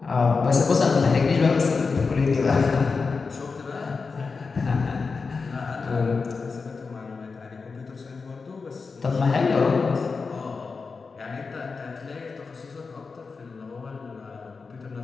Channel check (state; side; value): quieter; right; 4.6 dB